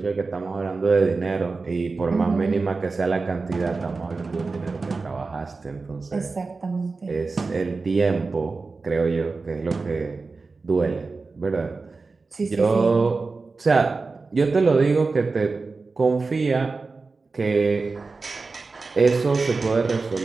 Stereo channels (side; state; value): left; quieter; 4.0 dB